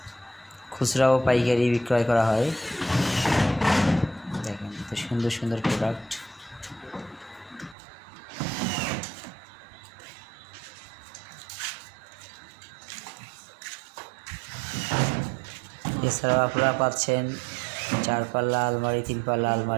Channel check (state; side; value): drops out; left; at 7.8 s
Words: খুচরা ও পাইকারি বিক্রয় করা হয়। দেখেন, এত সুন্দর সুন্দর প্রোডাক্ট। এছাড়াও আপনারা পাচ্ছেন 4 পাল্লা আলমারি, 3 পাল্লা